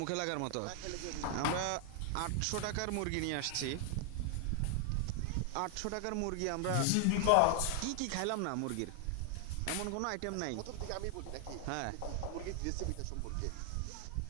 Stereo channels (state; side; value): different; both; correlation 0.00